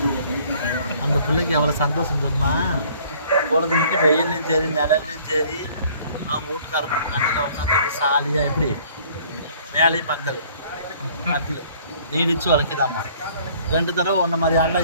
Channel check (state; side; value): inverted; both; correlation -0.56